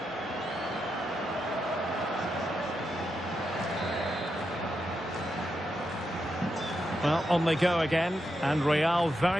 Well, on they go again, and Real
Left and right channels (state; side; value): normal; both; correlation 0.85